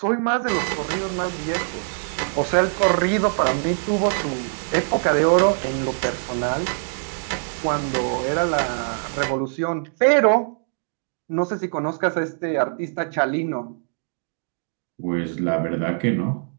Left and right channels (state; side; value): silent; left; digital silence